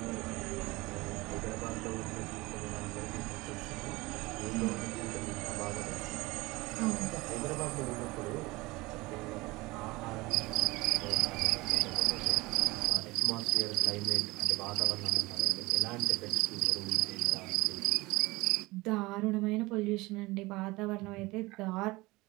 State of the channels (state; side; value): quieter; left; 21.4 dB